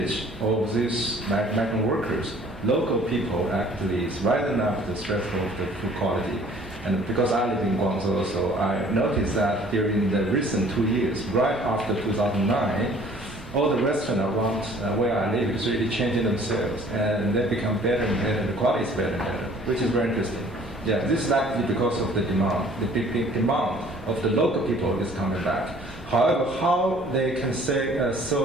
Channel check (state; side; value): normal; both; correlation 0.54